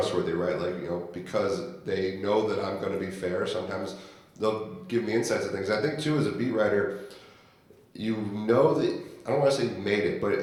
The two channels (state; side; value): identical; both; correlation 1.00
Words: right? Like, because they know that I'm going to be fair, sometimes they'll give me insights and things. I think too, as a beat writer, you know that, I don't want to say you made it,